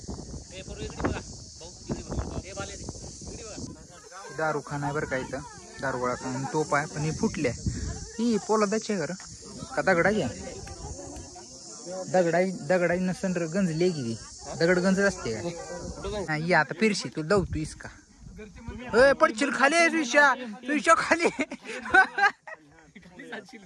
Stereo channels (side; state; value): both; identical; correlation 1.00